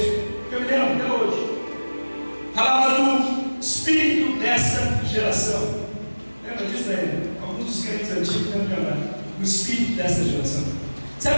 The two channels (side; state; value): both; inverted; correlation -1.00